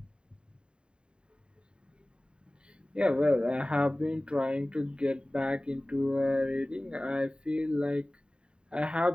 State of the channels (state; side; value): late; left; 0.051 ms